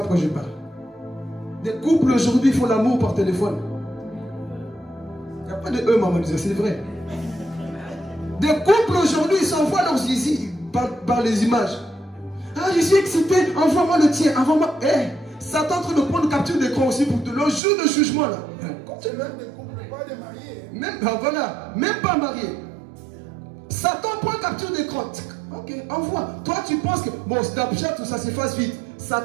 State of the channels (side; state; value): left; drops out; at 17.6 s